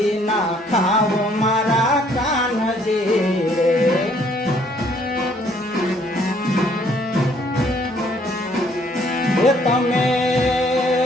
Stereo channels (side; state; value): both; normal; correlation 0.63